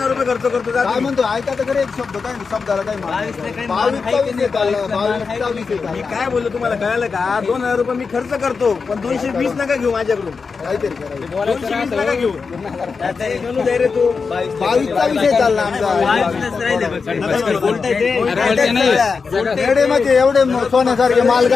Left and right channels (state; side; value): quieter; right; 5.0 dB